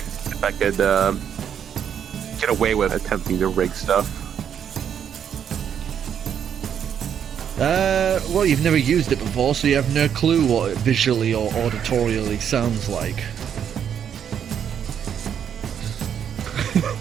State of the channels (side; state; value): left; quieter; 8.5 dB